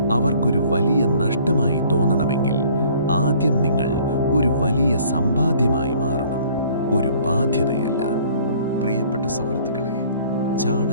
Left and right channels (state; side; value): inverted; both; correlation -0.55